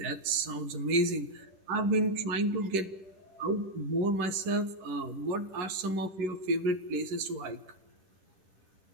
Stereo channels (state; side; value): late; left; 10 ms